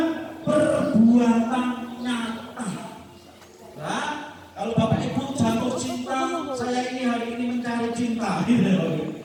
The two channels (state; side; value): identical; both; correlation 1.00